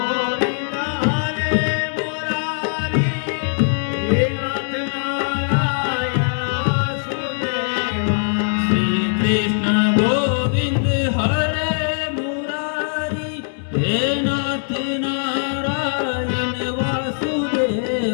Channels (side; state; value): right; silent; digital silence